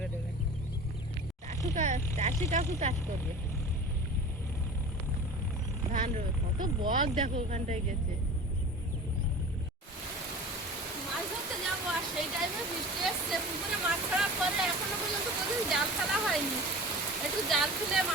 দেবেন। চাষি কাকু চাষ করবে, ধান রবে। কত বক দেখো ওখানটায় গেছে। মাছ ধরতে যাবো, আর সেই টাইমে বৃষ্টি এসছে। পুকুরে মাছ ছাড়ার পরে এখনো পর্যন্ত কোনোদিন জাল ফেলা হয়নি। একটু জাল ফেলে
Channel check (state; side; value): normal; both; correlation 0.37